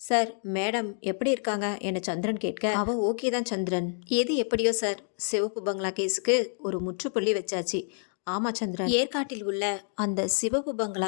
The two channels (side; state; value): right; silent; 59 dB below the other